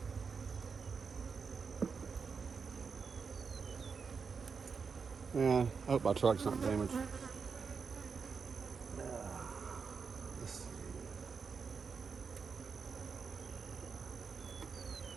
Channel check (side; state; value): left; quieter; 5.5 dB